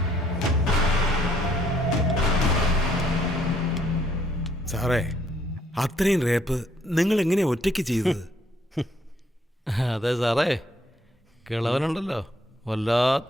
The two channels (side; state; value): both; normal; correlation 0.67